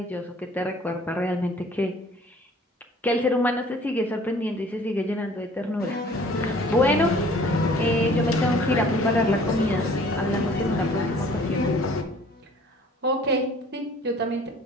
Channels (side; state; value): both; normal; correlation 0.52